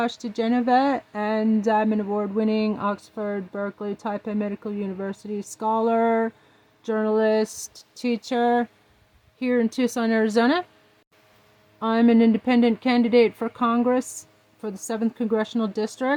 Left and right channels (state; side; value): identical; both; correlation 1.00